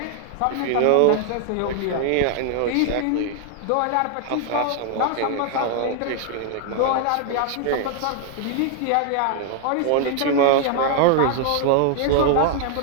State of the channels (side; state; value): both; different; correlation 0.00